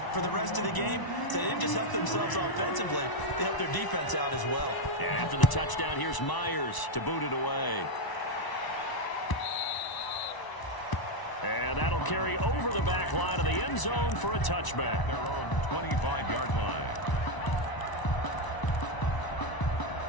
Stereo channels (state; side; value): late; right; 1.0 ms